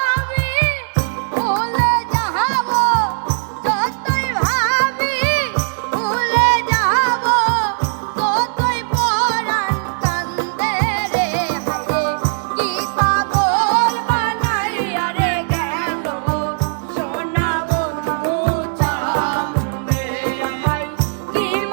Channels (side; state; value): left; silent; digital silence